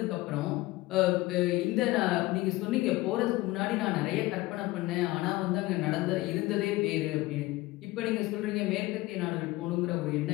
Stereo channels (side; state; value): right; quieter; 19.4 dB